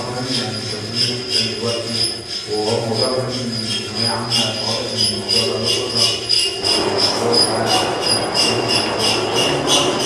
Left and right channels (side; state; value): both; identical; correlation 1.00